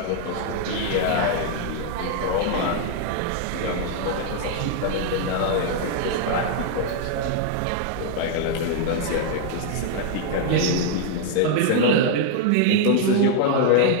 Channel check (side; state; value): both; different; correlation 0.00